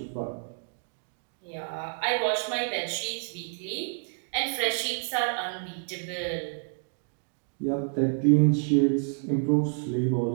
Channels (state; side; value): silent; left; 56 dB below the other